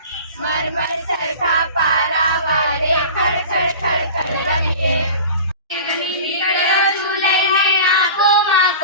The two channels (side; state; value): both; inverted; correlation -0.37